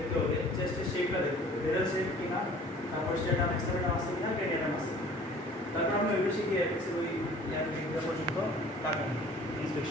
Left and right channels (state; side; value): normal; both; correlation 0.49